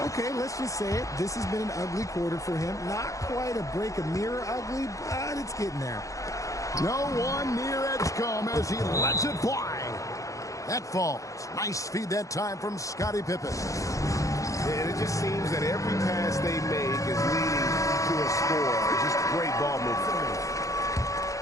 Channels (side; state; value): right; late; 0.16 ms